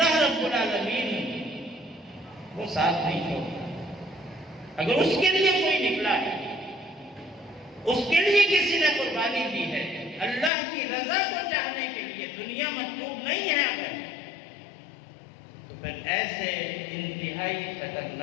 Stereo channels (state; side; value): drops out; right; at 10.5 s